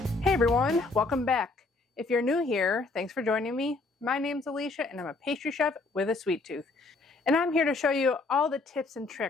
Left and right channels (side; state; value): right; quieter; 3.5 dB